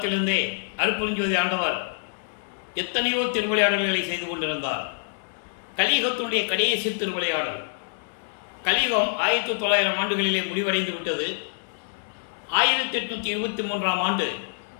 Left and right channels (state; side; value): silent; right; 61 dB below the other